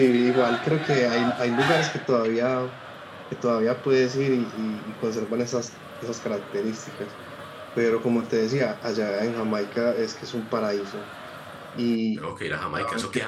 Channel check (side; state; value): both; identical; correlation 1.00